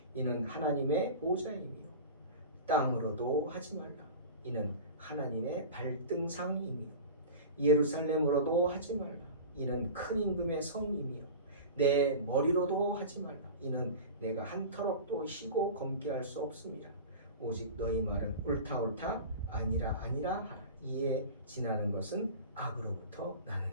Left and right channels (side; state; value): both; inverted; correlation -0.34